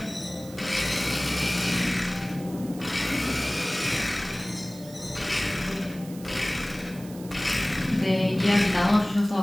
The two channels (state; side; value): noise; right; hiss, 19 dB below the sound